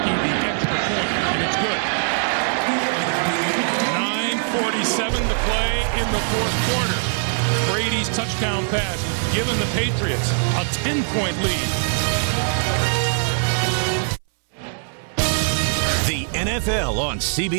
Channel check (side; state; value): left; silent; 65 dB below the other